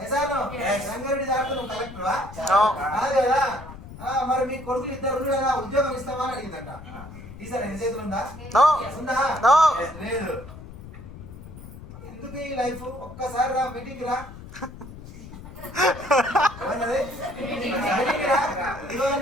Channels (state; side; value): noise; left; rumble, 15 dB below the sound